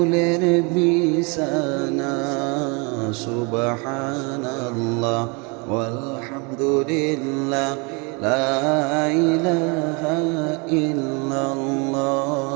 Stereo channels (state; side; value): quieter; left; 31.4 dB